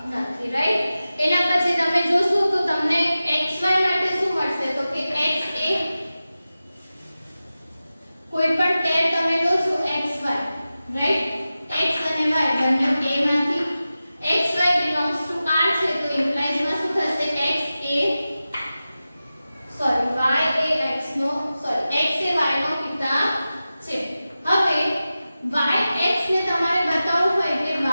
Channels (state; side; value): inverted; both; correlation -0.94